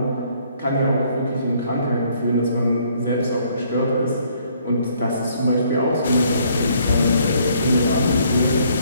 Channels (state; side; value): inverted; both; correlation -0.65